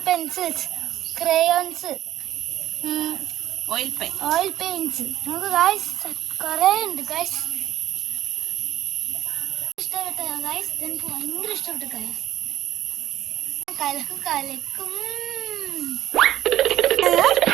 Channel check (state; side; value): quieter; left; 13.2 dB